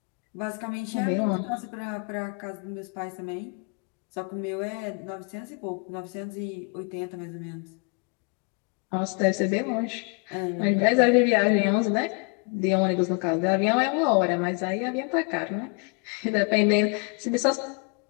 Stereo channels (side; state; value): right; quieter; 35.5 dB